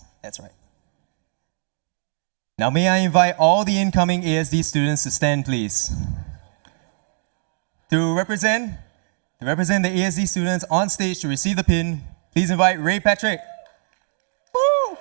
that's right. Now may I invite all the incoming ASD students to stand, please. To represent the ASD students on stage to receive the pin, please invite Ray Patrick. Woo!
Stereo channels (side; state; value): left; silent; digital silence